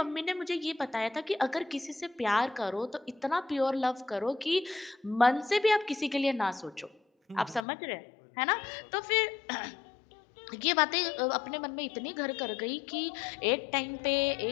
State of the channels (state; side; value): drops out; right; at 7.7 s